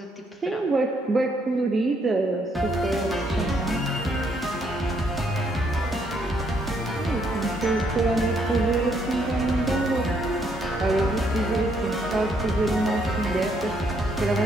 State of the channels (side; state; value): both; normal; correlation 0.71